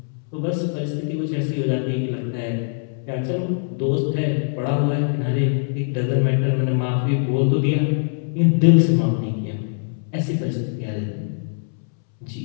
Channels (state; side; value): silent; right; 64 dB below the other